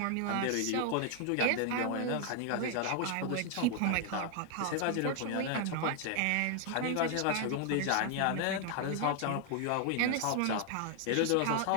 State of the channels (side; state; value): both; different; correlation 0.00